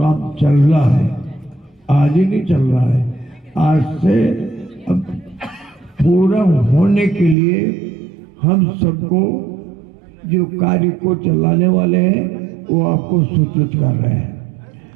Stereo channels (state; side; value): drops out; left; at 7.4 s